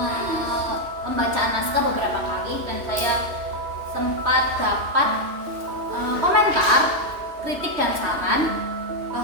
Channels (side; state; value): left; late; 3.1 ms